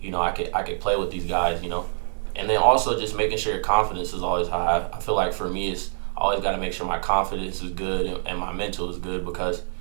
I could play with these guys, And then also just making sure your confidence is always high. I feel like for me, it's always got to make sure my confidence is good and my mental is good, because,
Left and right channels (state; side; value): silent; left; 62 dB below the other